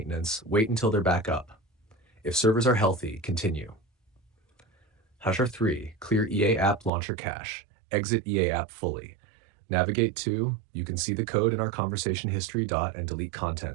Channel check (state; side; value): drops out; left; at 6.9 s